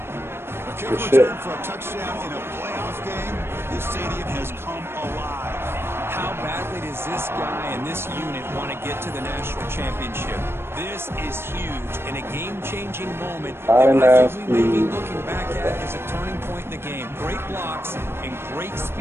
A kick return for a touchdown in a playoff game. This stadium has come alive. How badly does this guy and this unit want to get to the national championship? This is huge and a game-changing moment that I think we may be looking back at as a turning point in the game. Great blocks and great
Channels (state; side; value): late; left; 0.12 ms